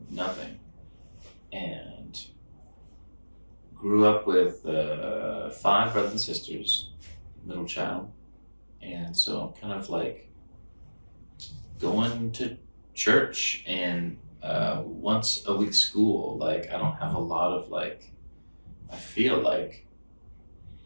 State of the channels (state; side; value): inverted; both; correlation -1.00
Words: nothing, and grew up with 5 brothers and sisters, middle child, and so kind of like going to church and once a week school. Like, I don't have a lot of like, I feel like